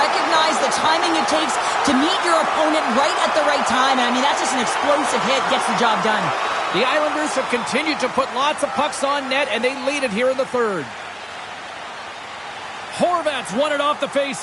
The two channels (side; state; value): both; identical; correlation 1.00